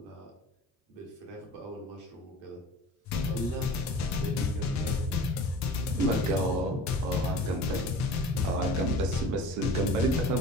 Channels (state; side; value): normal; both; correlation 0.40